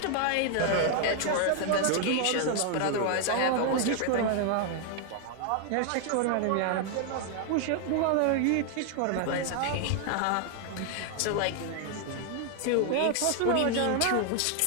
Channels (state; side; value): different; both; correlation 0.00